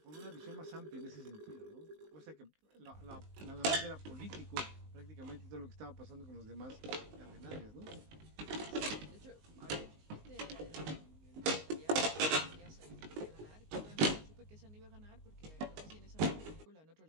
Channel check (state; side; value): late; left; 19 ms